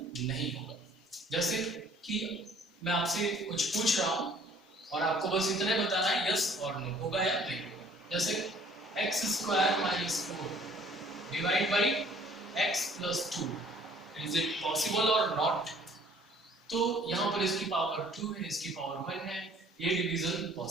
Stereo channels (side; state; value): both; normal; correlation 0.56